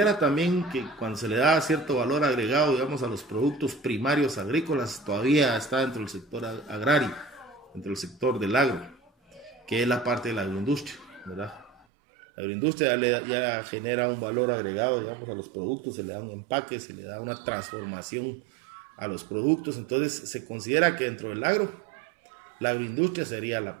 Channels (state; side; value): drops out; left; at 11.9 s